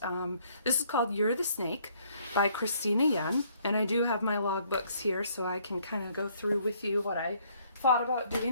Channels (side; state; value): both; inverted; correlation -0.65